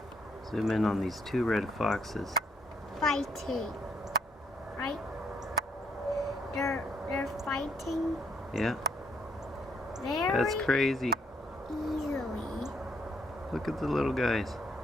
zoom in on these two red foxes. Fighting, right? They're fighting. Yeah, Very that's crazy. easily. Look at the little guys.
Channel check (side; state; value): both; normal; correlation 0.71